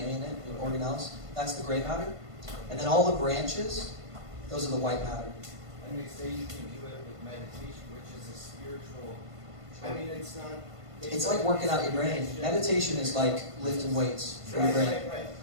in it, and organelles, that's the gray matter. And then all the branches, those are the white matter. And they say you can do it with meditation, which is a spiritual. I mean, it's not. It's like working out your brain. Meditation is like lifting weights for your brain. Right.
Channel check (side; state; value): left; late; 1.5 ms